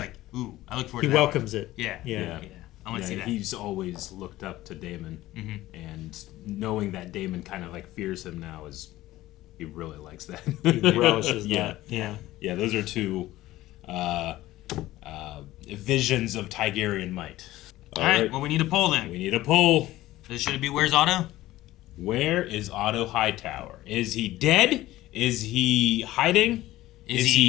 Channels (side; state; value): right; quieter; 16.3 dB